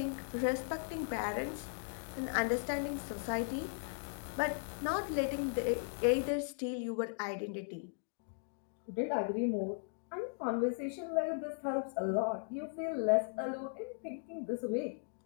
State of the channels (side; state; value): right; silent; digital silence